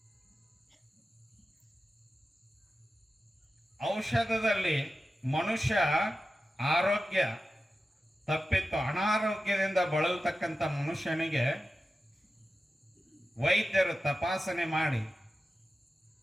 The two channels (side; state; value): both; normal; correlation 0.93